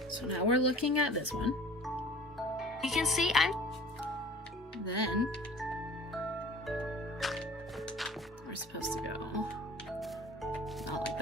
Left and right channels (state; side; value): normal; both; correlation 0.46